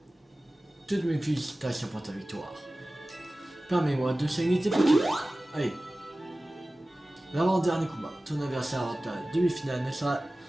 Toutes mes félicitations pour ta victoire. Permets-moi de saigner tes petits. Allez. L'avant-dernier combat, ton adversaire en ta demi-finale ne sera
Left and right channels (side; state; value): both; normal; correlation 0.97